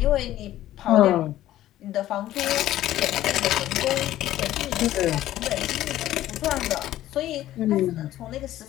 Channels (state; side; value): quieter; right; 13.8 dB